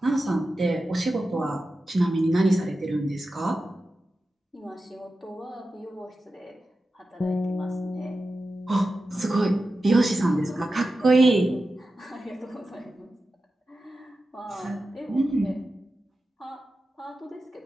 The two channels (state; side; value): normal; both; correlation 0.92